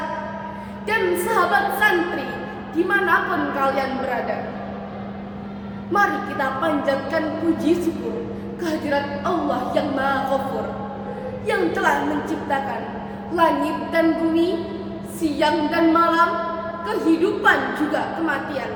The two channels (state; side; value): identical; both; correlation 1.00